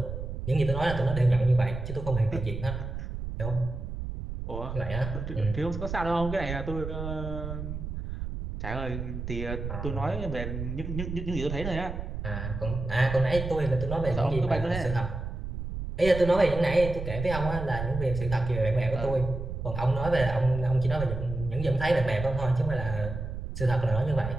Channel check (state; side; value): noise; right; rumble, 6 dB below the sound